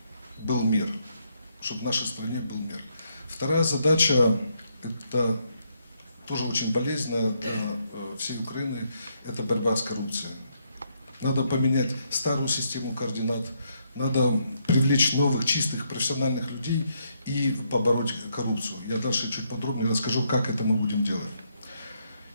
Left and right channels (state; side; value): inverted; both; correlation -0.76